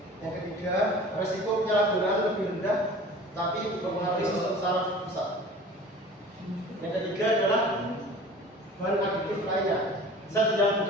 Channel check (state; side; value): normal; both; correlation 0.42